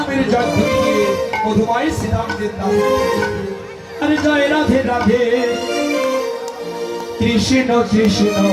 জয় ধরে গিয়ে মধুময় শ্রীরামদের নাম। আরে জয় রাধে রাধে কৃষ্ণ কৃষ্ণ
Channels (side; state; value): both; identical; correlation 1.00